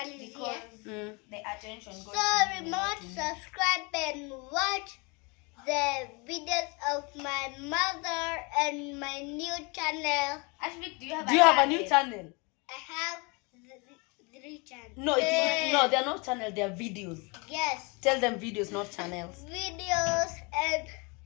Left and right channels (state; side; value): quieter; right; 29.8 dB